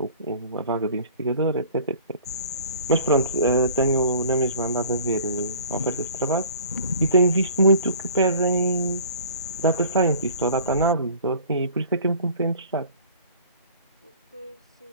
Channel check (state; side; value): inverted; both; correlation -0.47